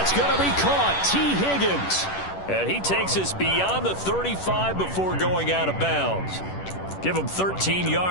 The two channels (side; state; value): right; late; 10 ms